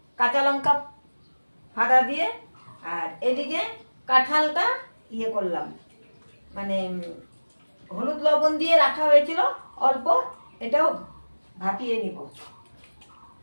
কাঁচা লঙ্কা ফাড়া দিয়ে। আর এদিকে কাঁঠালটা ইয়ে করলাম, মানে হলুদ লবণ দিয়ে রাখা হয়েছিল অল্প, এটাও ভাপিয়ে নিব।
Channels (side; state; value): both; inverted; correlation -1.00